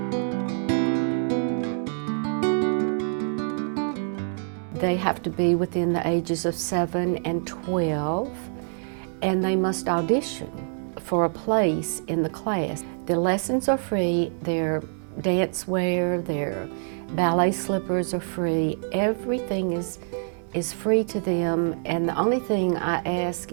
They have to be within the ages of 7 and 12, and they must audition for a place in the class. The lessons are free, their dance wear, their ballet slippers are free, everything is free to them, and the only thing I ask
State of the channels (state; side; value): silent; left; 61 dB below the other